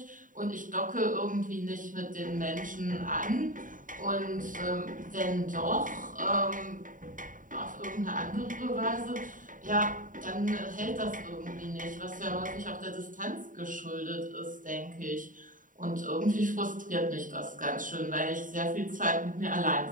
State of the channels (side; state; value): left; late; 0.38 ms